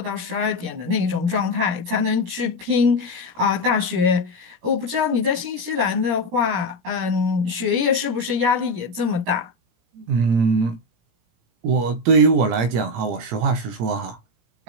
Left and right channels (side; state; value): left; late; 17 ms